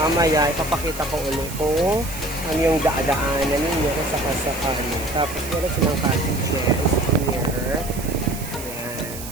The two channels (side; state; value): right; noise; hiss, 12 dB below the sound